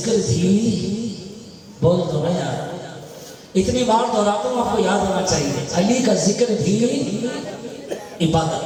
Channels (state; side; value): identical; both; correlation 1.00